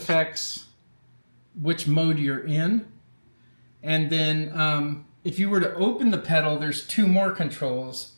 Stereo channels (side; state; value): both; inverted; correlation -1.00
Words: which mode you're in. And then if you were to open the pedal, there's 2 more controls.